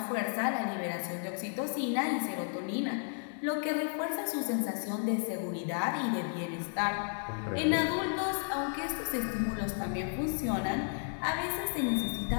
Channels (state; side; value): silent; right; 56 dB below the other